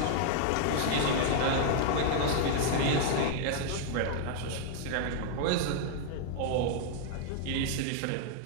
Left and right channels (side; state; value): both; different; correlation 0.00